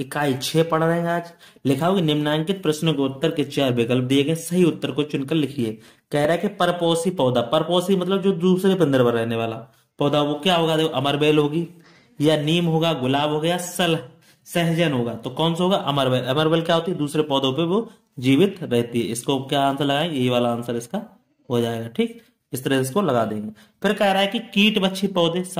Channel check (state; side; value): identical; both; correlation 1.00